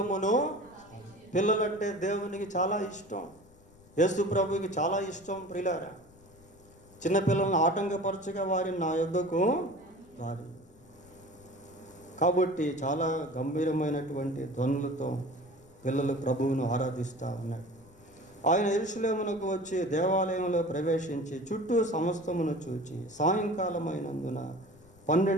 పిల్లలంటే దేవునికి చాలా ఇష్టం, యేసు ప్రభువుకి చాలా ఇష్టం. ప్రియులారా, చిన్నపిల్లలను ఆటంకపరచగా వారిని నా యొద్దకు రారు. కాబట్టి చాలా గంభీరమైనటువంటి ధ్వనులతో పిల్లలు ప్రభువును ఆరాధిస్తూ ఉన్నాడు. ఆయన యెరూషలేమునకు వచ్చి దేవాలయంలో ప్రవేశించి చుట్టూ సమస్తమును చూచి సాయంకాలమైనందున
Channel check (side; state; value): left; noise; rumble, 26 dB below the sound